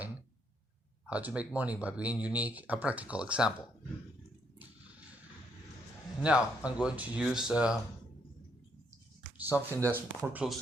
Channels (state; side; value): normal; both; correlation 0.73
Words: How to Make Money by Being Unique, a practical example. Now, I'm going to use something that's more close